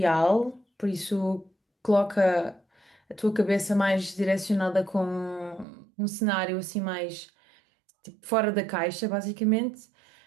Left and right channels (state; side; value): drops out; left; at 5.7 s